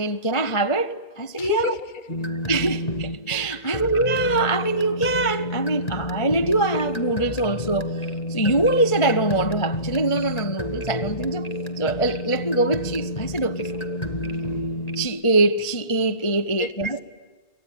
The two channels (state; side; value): late; right; 1.5 ms